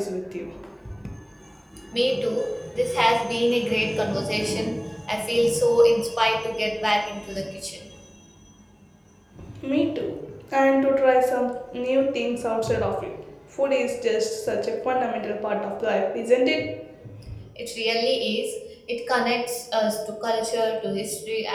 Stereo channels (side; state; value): both; identical; correlation 1.00